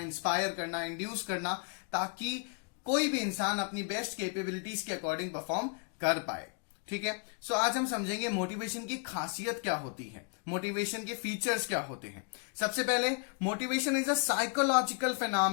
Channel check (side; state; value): right; quieter; 38.7 dB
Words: करना, इंड्यूस करना, ताकि कोई भी इंसान अपनी बेस्ट कैपेबिलिटीज के अकॉर्डिंग परफॉर्म कर पाए। ठीक है। सो आज हम समझेंगे मोटिवेशन की खासियत क्या होती है, मोटिवेशन के फीचर्स क्या होते हैं। सबसे पहले, motivation is a psychological